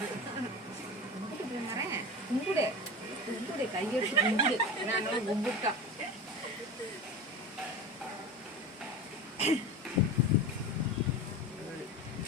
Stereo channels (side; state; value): both; normal; correlation 0.29